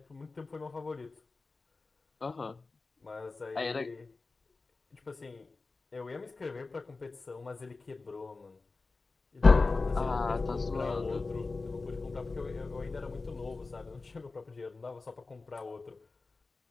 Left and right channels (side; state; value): right; quieter; 3.8 dB